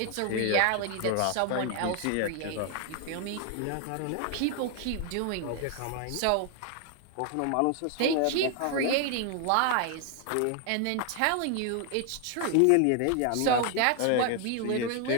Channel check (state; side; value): different; both; correlation 0.00